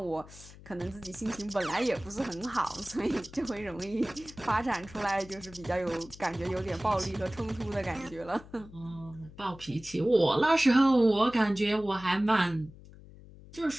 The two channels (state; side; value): noise; left; hum, 19 dB below the sound